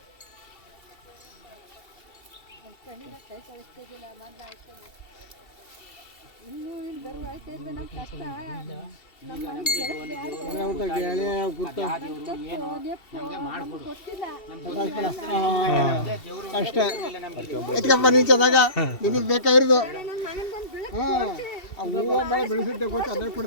ಅಷ್ಟೇ ಎತ್ಕಪ್ಪ ನೀನು ಚೆನ್ನಾಗ ನಿನಗೆ ಬೇಕಾಗಿರೋದು. ಬೆಳೆಸುತ್ತೆ ಗೊತ್ತು ಅದೇ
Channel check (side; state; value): right; late; 2.7 ms